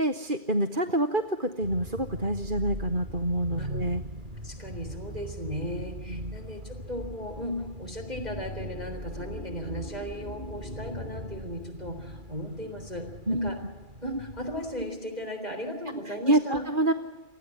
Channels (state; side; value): late; left; 2.4 ms